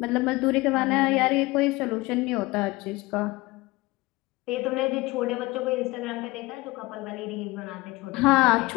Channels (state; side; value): quieter; right; 21.6 dB